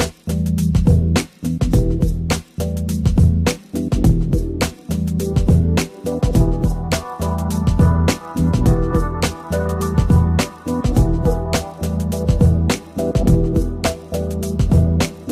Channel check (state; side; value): identical; both; correlation 1.00